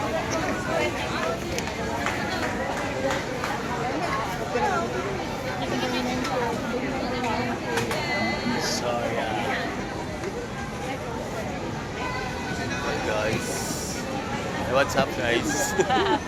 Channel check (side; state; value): both; identical; correlation 1.00